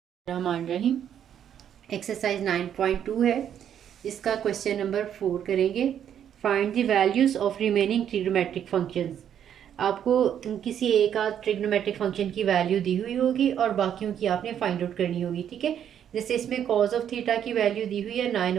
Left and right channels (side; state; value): left; quieter; 9.4 dB